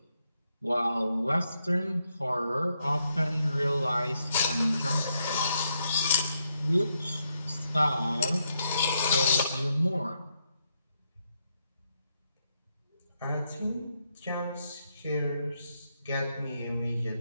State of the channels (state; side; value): inverted; both; correlation -0.80